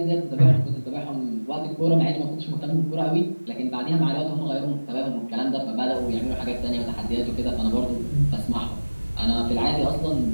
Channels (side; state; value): both; inverted; correlation -1.00